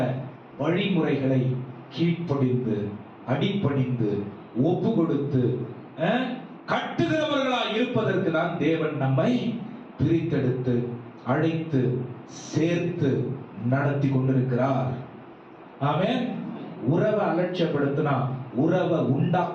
வழிமுறைகளை கீழ்ப்படிந்து அடிபணிந்து ஒப்பு கொடுத்து கட்டுகிறவர்களாய் இருப்பதற்கு தான் தேவன் நம்மை பிரித்தெடுத்து அழைத்து சேர்த்து நடத்தி கொண்டிருக்கிறார். ஆமென். உறவை அலட்சியப்படுத்தினா உறவை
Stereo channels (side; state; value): both; identical; correlation 1.00